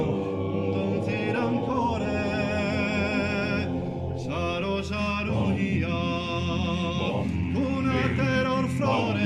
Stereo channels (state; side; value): identical; both; correlation 1.00